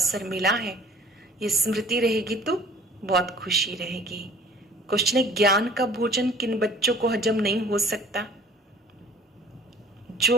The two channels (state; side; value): normal; both; correlation 0.50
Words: मिला है, ये स्मृति रहेगी तो बहुत खुशी रहेगी। क्वेश्चन है ज्ञान का भोजन किन बच्चों को हजम नहीं हो सकता?